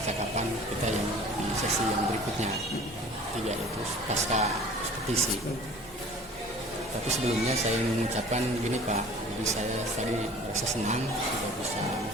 kita yang di sesi yang berikutnya, 3 yaitu pasca ekspedisi. Tapi sebelumnya saya ingin mengucapkan gini Pak, jadi saya tadi merasa senang sudah bisa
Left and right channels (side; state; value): both; normal; correlation 0.47